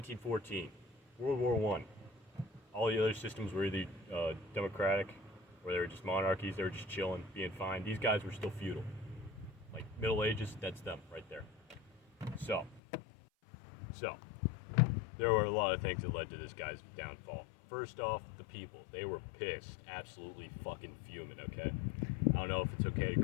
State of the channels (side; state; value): right; drops out; at 12.8 s